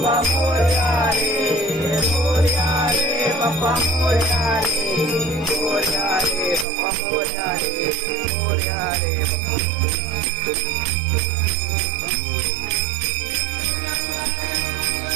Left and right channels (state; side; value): drops out; left; at 6.7 s